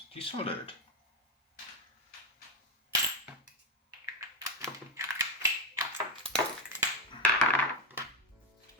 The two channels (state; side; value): normal; both; correlation 0.08